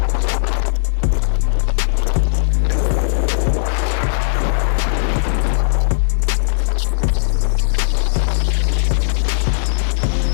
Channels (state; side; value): silent; right; 60 dB below the other